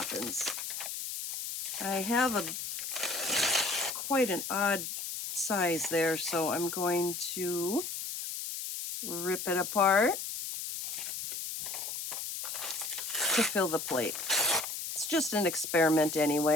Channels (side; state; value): left; noise; hiss, 5 dB below the sound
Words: I have quite an odd size there, so I'm going to rip it apart to fill the plate. It's just an experiment